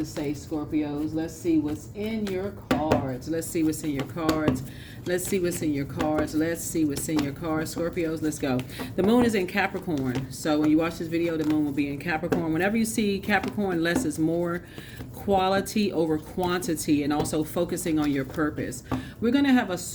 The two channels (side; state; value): both; identical; correlation 1.00